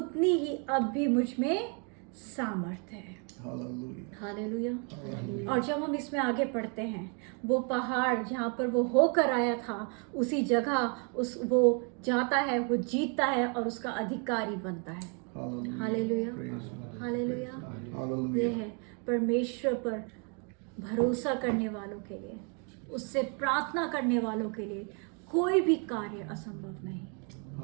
ही अब भी मुझ में सामर्थ है। हालेलुया। और जब हम इसमें आगे पढ़ते हैं, वो पहाड़ जहाँ पर वो होकर आया था उसी जगह वो जाता है, वो जीतता है और उसका अधिकारी बनता है। हालेलुया। हालेलुया। ये है परमेश्वर पर भरोसा करने वालों के लिए, उससे प्रार्थना करने वालों के लिए कोई भी कार्य असंभव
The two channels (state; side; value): quieter; left; 37.5 dB